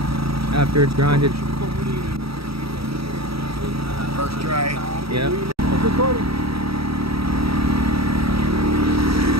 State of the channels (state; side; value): late; left; 0.76 ms